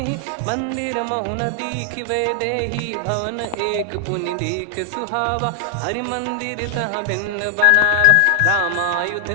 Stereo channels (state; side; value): different; both; correlation 0.00